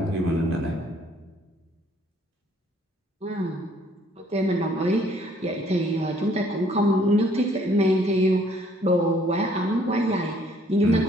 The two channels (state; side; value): normal; both; correlation 0.62